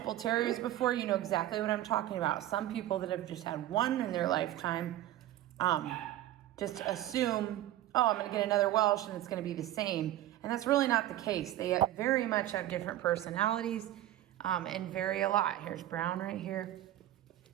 terriers before, you know exactly what I'm talking about. Some people that have just had one in their lifetime just assume, oh, I'm gonna get another Welsh and it's gonna be the same. And that's really not the case. They very much have different personalities and vary a lot. Here's brown right here.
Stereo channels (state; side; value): quieter; left; 13.8 dB